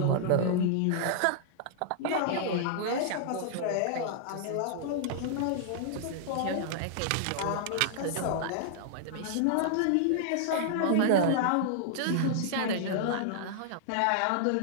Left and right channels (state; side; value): different; both; correlation -0.01